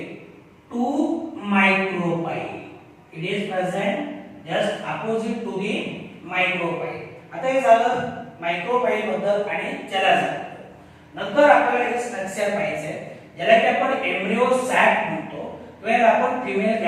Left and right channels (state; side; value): identical; both; correlation 1.00